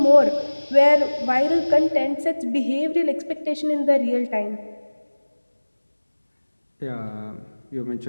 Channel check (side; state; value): both; inverted; correlation -1.00